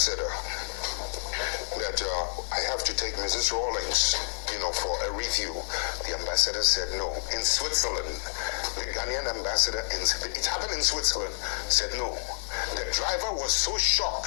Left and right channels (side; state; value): right; silent; digital silence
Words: that I have to take Mrs. Rawlings, for a review, the ambassador said no. In Switzerland, the Ghanaian ambassador, it happened in Switzerland, said no. The driver was so